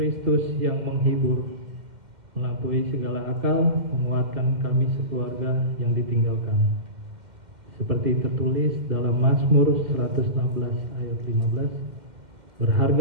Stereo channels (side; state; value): left; late; 2.1 ms